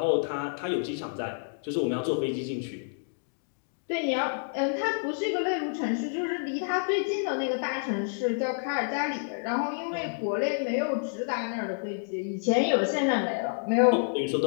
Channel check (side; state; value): right; silent; digital silence